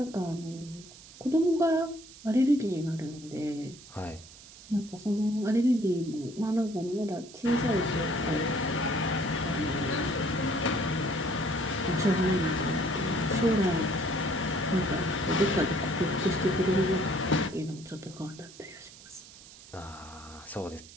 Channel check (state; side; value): noise; right; hiss, 19 dB below the sound